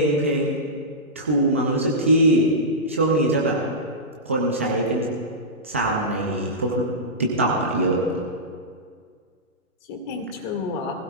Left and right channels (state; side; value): normal; both; correlation -0.14